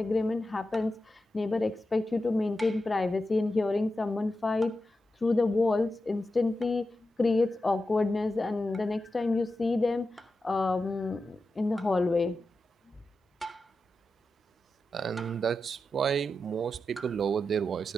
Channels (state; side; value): normal; both; correlation 0.90